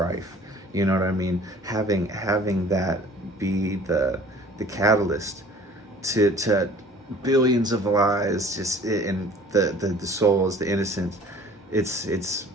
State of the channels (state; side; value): normal; both; correlation 0.49